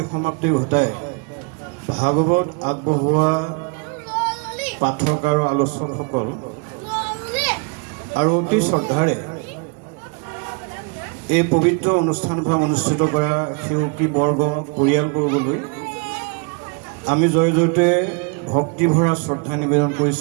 ঘটাই ভাগৱত আগবঢ়োৱা পাঠক আৰু আলোচকসকল আৰু অতি শ্ৰদ্ধাৰে এই পবিত্ৰ অনুষ্ঠানভাগ অনুষ্ঠিত কৰা সেৱকী বৰ্গ পৰিয়ালবৰ্গলৈ আমি জয় জয়তে ভক্তিভৰা শ্ৰদ্ধা নিবেদন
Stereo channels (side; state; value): left; quieter; 33.1 dB